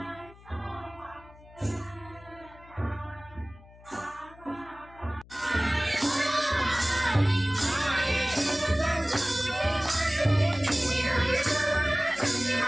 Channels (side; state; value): left; noise; hum, 23 dB below the sound